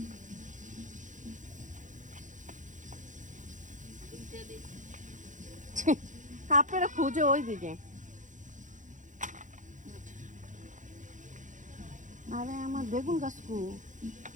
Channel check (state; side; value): late; left; 0.36 ms